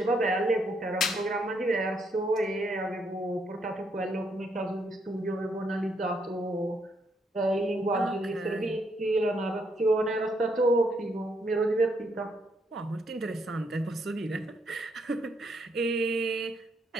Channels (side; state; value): both; normal; correlation 0.75